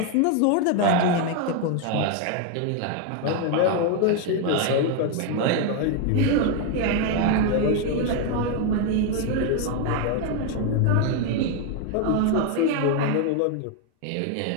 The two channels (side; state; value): both; different; correlation 0.01